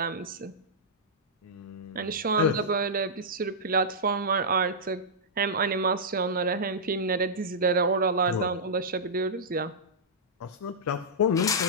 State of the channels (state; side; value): normal; both; correlation -0.13